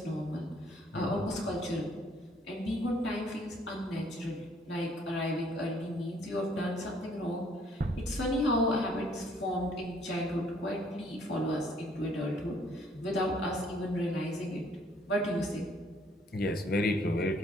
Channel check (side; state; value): both; normal; correlation 0.63